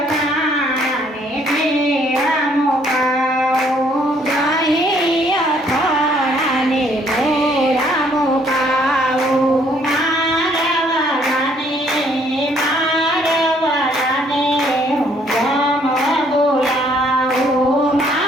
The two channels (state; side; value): normal; both; correlation 0.65